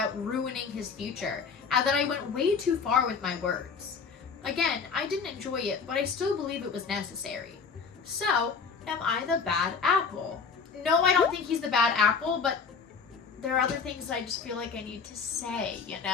ruining his future, and that I went way too far with my words. Again, I didn't enjoy it, but I still believe it was necessary. So, am I the bad apple? No, I don't think he's the bad apple, but there are other things that I just feel like I need to say, you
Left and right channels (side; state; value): right; quieter; 5.6 dB